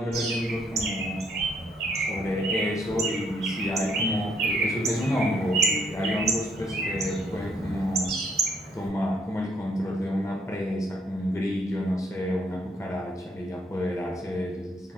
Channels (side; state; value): both; normal; correlation 0.70